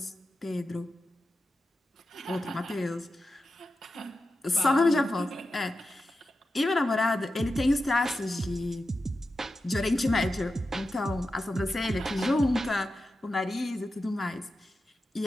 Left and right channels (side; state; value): both; normal; correlation 0.91